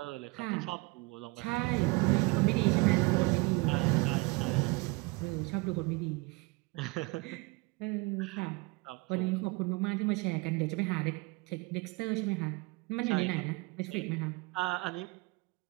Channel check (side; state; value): left; quieter; 26.5 dB